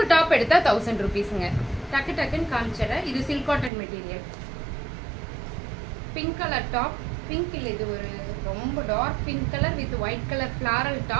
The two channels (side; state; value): left; drops out; at 3.7 s